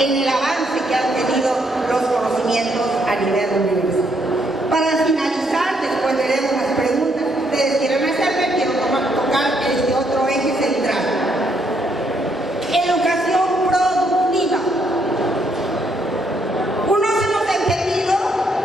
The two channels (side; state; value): both; normal; correlation 0.73